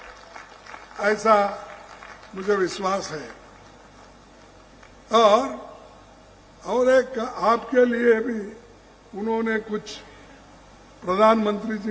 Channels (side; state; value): both; identical; correlation 1.00